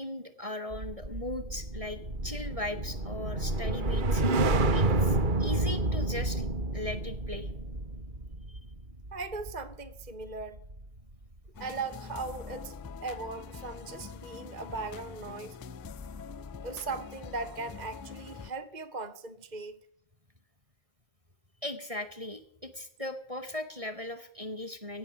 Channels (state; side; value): late; left; 1.6 ms